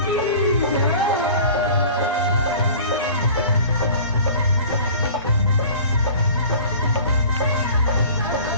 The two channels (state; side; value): inverted; both; correlation -0.43